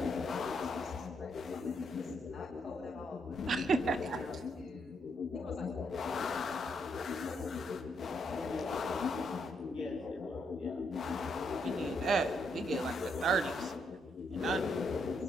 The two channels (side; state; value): both; normal; correlation 0.76